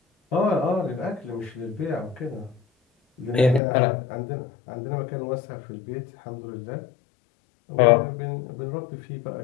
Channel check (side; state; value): right; drops out; at 3.6 s